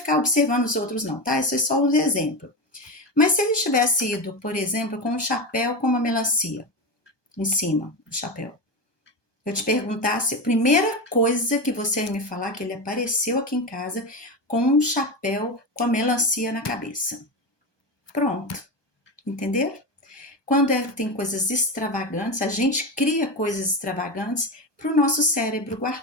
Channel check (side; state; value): right; late; 1.2 ms